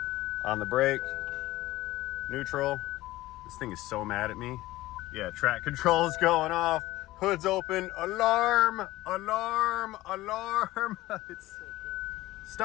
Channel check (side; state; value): right; quieter; 17.3 dB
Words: On the brake. Neutral. This thing is so mad at me. Yeah, track control is going off. Hood's open. Alarm! Alarm! Alarm! It's so good.